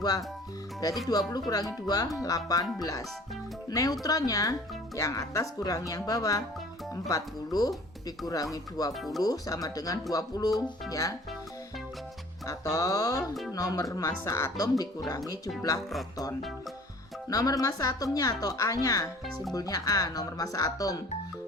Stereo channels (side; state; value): both; normal; correlation 0.49